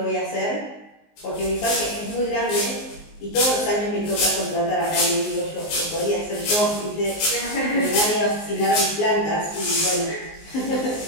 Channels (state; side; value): late; right; 19 ms